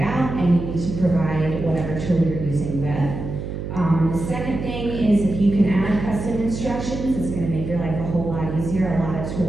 out, and you need to provide whatever tool you're using with. The second thing is if you can add custom instructions, it's going to make your life a whole lot easier. A lot of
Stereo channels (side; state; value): right; noise; hum, 6 dB below the sound